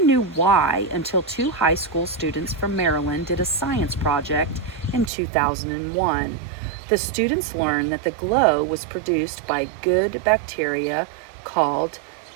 knew why until two high school students from Maryland did a science project in 2001. The students learned that the glow was produced by good bacteria called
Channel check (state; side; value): drops out; left; at 5.1 s